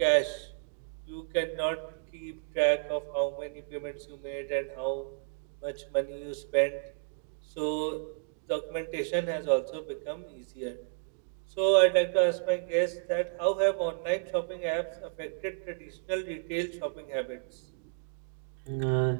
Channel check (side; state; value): left; silent; digital silence